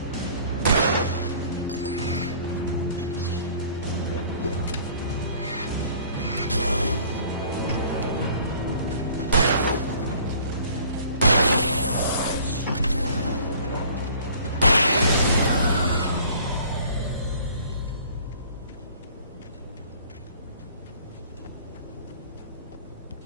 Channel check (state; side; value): inverted; both; correlation -0.52